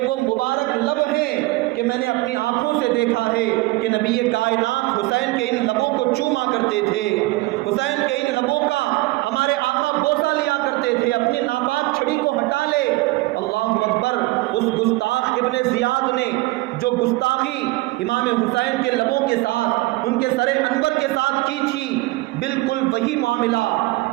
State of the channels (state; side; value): quieter; left; 21.2 dB